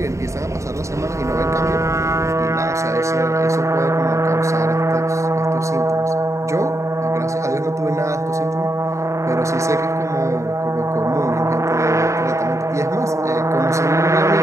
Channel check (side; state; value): left; late; 0.14 ms